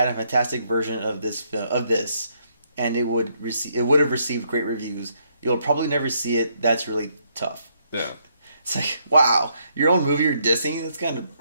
a fantastic version of this film, and it would have received great reviews. You'll probably never see it. That's really tough." Yeah. It's like, wow, your own movie you're dissing? That's kind of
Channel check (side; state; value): both; inverted; correlation -0.73